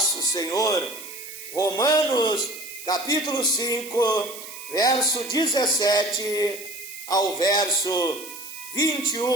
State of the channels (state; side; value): noise; right; hiss, 13 dB below the sound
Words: Senhor. Romanos capítulo 5, verso 17 ao verso